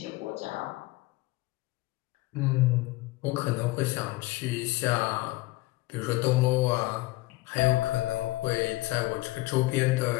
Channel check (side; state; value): right; quieter; 20.0 dB